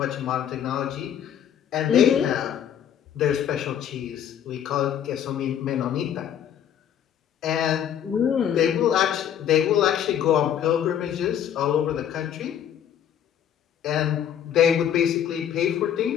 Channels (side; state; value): right; quieter; 9.5 dB